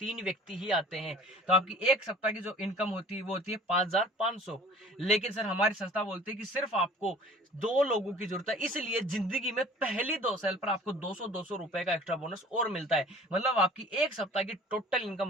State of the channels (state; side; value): normal; both; correlation 0.47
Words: व्यक्ति ही आते हैं, तो आपकी एक सप्ताह की जो इनकम होती है वो होती है 5500। लेकिन सर हमारी संस्था बोलती है कि सिर्फ आपको 2 लोगों की जरूरत है, इसलिए जिंदगी में पहली 2 साल पर आपको 200 रुपए का एक्स्ट्रा बोनस और मिलता है। मतलब आपकी एक सप्ताह की टोटल इनकम